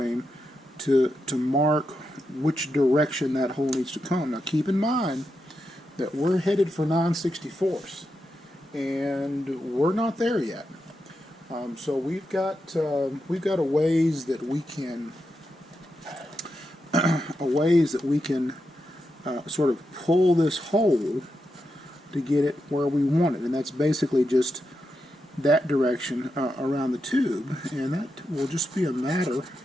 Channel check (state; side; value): normal; both; correlation 0.86